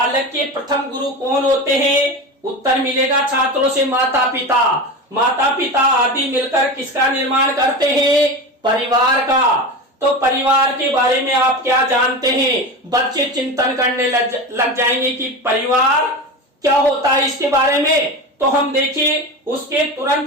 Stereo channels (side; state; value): both; normal; correlation 0.25